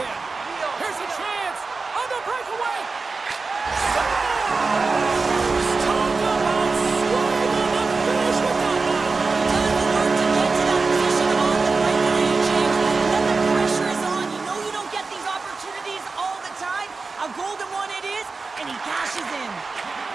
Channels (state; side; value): quieter; left; 4.2 dB